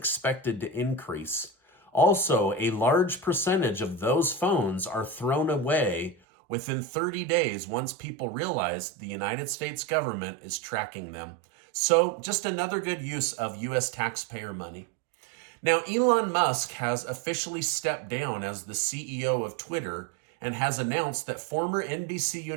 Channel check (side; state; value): left; drops out; at 6.2 s